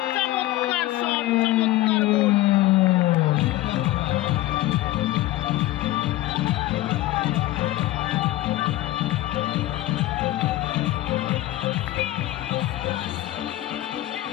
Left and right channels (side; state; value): right; quieter; 16.3 dB